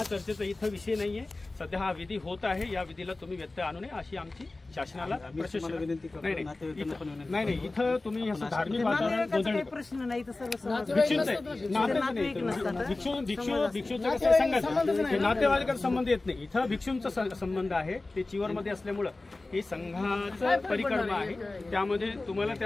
चर्चेचा इथं विषय नाहीये. सध्या हा विधी होत आहे, या विधीला तुम्ही व्यत्यय आणू नये अशी आमची शासनाला प्रशासनाला विनंती करतो. नाही इथं तुम्ही असं धार्मिक वातावरण प्रश्न नाही, भिक्षूचं कसं सांगायचं, नातेवाईकांचा संबंध येत नाही. इथं भिक्षूंचा संबंध आहे, ते चिवरमध्ये असल्यामुळं हे संघाचं परिक्रमा आहे, त्यामध्ये तुम्हाला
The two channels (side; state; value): right; quieter; 3.2 dB